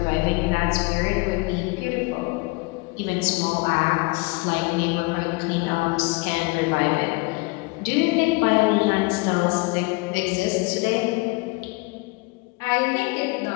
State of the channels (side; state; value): right; quieter; 26.4 dB